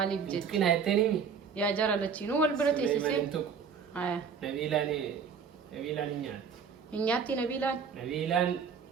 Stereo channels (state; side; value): quieter; left; 6.4 dB